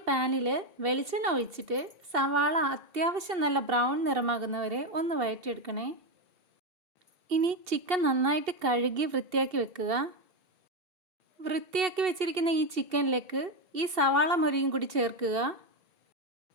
പാനിൽ വെളിച്ചെണ്ണ ഒഴിച്ചിട്ട് സവാള അത്യാവശ്യം നല്ല ബ്രൗൺ നിറമാകുന്നവരെ ഒന്ന് വഴറ്റിയെടുക്കണേ. ഇനി ചിക്കൻ നന്നായിട്ട് കഴുകി വൃത്തിയാക്കി വെക്കുക. വൃത്തിയാക്കി വെച്ചിരിക്കുന്ന ഈ ചിക്കനിലേക്ക് ഈ സവാള മൊരിയും കൂടി ചേർക്കുക.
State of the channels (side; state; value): left; late; 2.7 ms